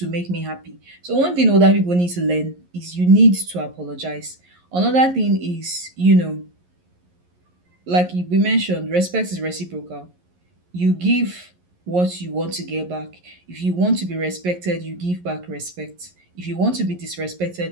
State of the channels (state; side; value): late; left; 11 ms